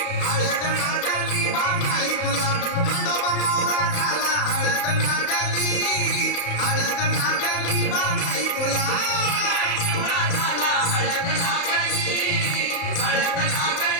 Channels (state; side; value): late; right; 34 ms